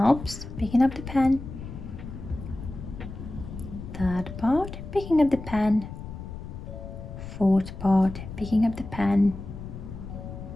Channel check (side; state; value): left; noise; rumble, 10 dB below the sound